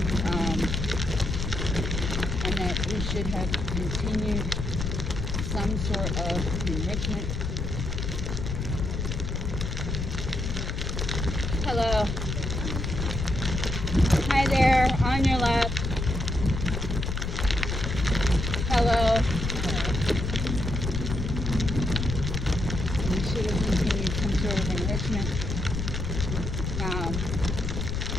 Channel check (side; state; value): left; noise; rumble, 2 dB below the sound